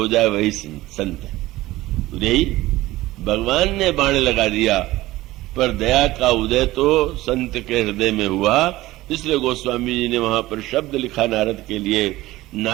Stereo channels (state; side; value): quieter; left; 17.5 dB